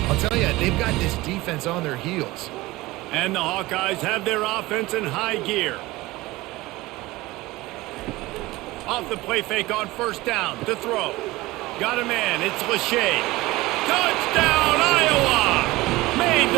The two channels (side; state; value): left; quieter; 19.7 dB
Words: I'll tell you, they've got this defense on their heels. And the Hawkeyes have their offense in high gear. Off the play fake on first down to throw. Got a man. It's Lachey. Touchdown, Iowa! Made